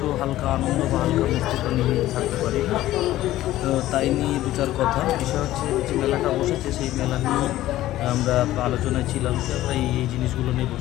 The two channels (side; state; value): right; quieter; 14.8 dB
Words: হালকা আনন্দ বা হালকা মিষ্টি তো নিয়ে থাকতে পারি না। তো তাই নিয়ে দু চার কথা। বিষয় হচ্ছে যে মেলাটা বসেছে, সেই মেলা নিয়ে আমরা আলোচনায় ছিলাম যে আমরা এই জিনিসগুলো নেব।